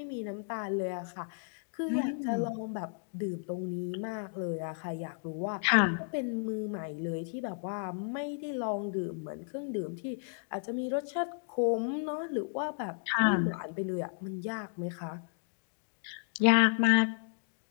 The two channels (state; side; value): silent; right; digital silence